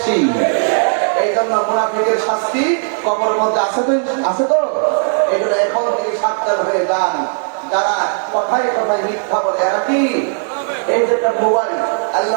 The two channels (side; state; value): left; silent; digital silence